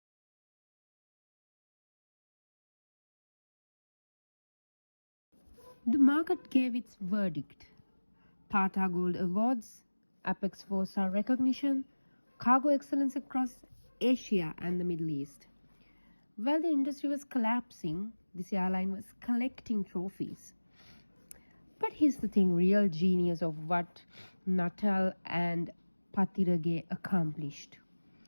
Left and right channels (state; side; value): inverted; both; correlation -1.00